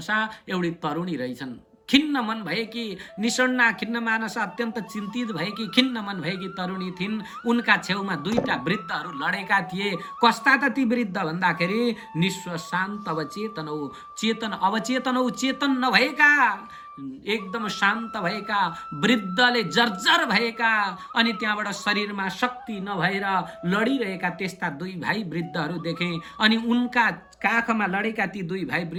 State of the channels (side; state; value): both; identical; correlation 1.00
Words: एउटी तरुणी रहेछन्, खिन्न मन भएकी, निषण्णा खिन्न मानस अत्यन्त चिन्तित भएकी, खिन्न मन भएकी तरुणी थिइन्। उनका छेउमा दुईटा वृद्धहरू लडेका थिए। कस्ता त ती वृद्ध भन्दाखेरि निस्व शान्त अवचेतनौ, चेतन अवचेतनौ, चेतन नभएका, एकदम शान्त भएका, वृद्धले जर्जर भएका अनि त्यहाँबाट शरीरमा शक्ति नभएर लडिरहेका त्यस्ता दुई भाइ वृद्धहरू देखे। अनि उनका काखमा लडेका ती दुई भाइ